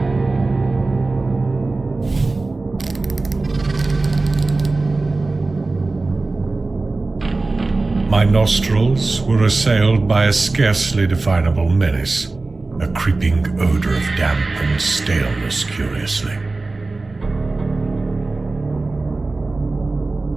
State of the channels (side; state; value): left; quieter; 3.4 dB